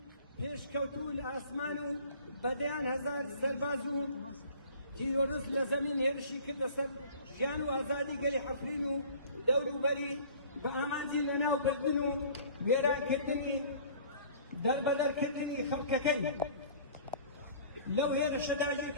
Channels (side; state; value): both; inverted; correlation -0.48